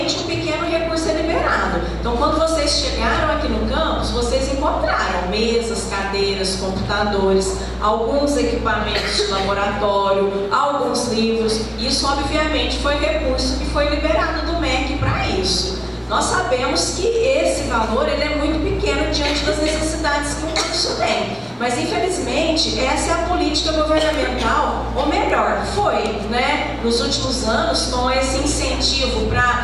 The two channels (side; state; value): both; identical; correlation 1.00